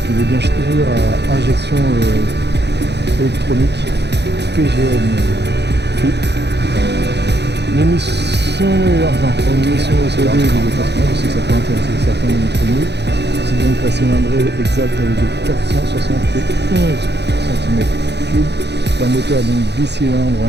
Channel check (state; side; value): late; left; 0.50 ms